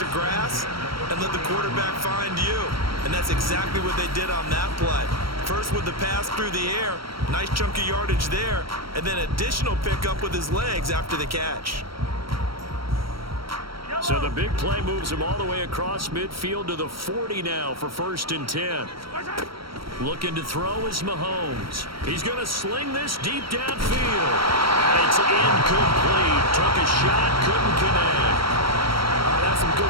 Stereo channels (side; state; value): left; late; 0.74 ms